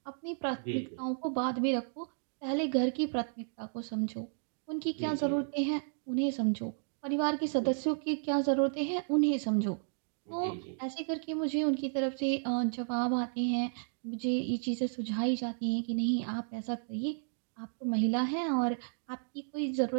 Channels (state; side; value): silent; left; digital silence